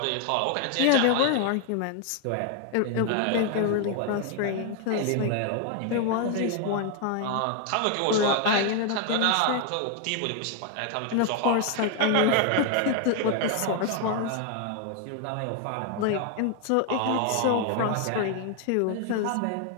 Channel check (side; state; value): both; different; correlation 0.00